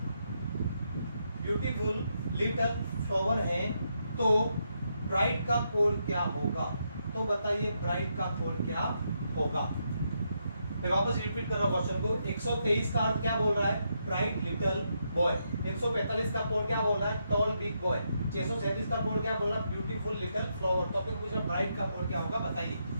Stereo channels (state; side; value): inverted; both; correlation -0.80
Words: है, तो ब्राइट का कोड क्या होगा? तो बताइए ब्राइट का कोड क्या होगा? मैं वापस रिपीट कर रहा हूं क्वेश्चन को। 123 का अर्थ क्या बोल रहा है? Bright little boy. 145 का कोड क्या बोल रहा है? Toll big boy. 637 का कोड क्या बोल रहा है? Beautiful little flower. टॉपिक पूछा ब्राइट का कोड क्या होगा, बताइए।